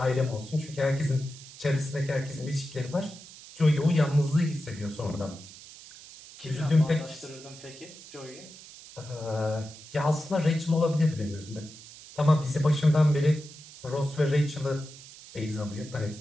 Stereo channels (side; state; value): right; noise; hiss, 18 dB below the sound